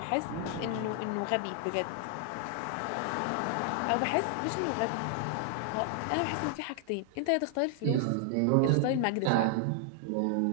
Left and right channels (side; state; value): both; different; correlation 0.00